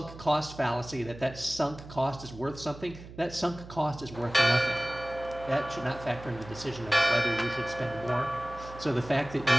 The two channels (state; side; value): noise; right; hum, 15 dB below the sound